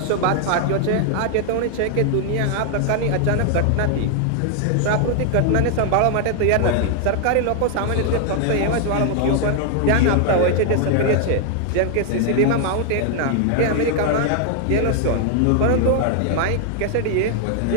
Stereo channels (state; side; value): different; both; correlation 0.00